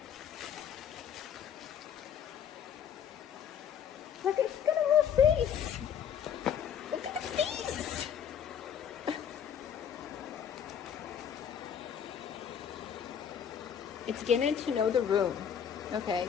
Look, it's got a little face. Look at the face. It's getting to know the room. Okay,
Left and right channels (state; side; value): quieter; right; 8.2 dB